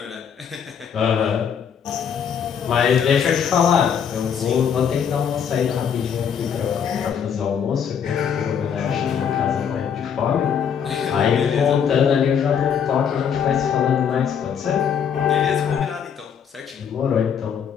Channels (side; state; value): right; quieter; 7.7 dB